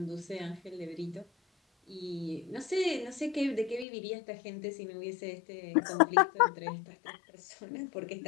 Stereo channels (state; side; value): drops out; right; at 3.9 s